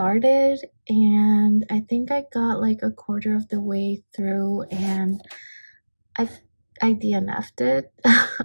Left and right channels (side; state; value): both; inverted; correlation -1.00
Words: and I think I got like a quarter of the way through and I DNF'd it.